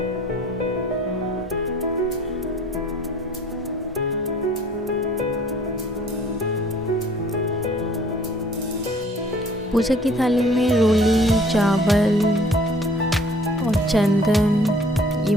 पूजा की थाली में रोली, चावल और चंदन, ये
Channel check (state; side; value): normal; both; correlation 0.54